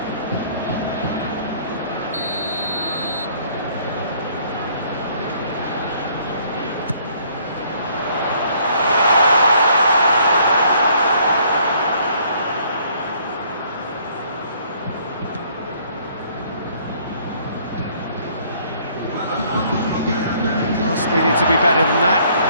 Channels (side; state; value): both; inverted; correlation -0.61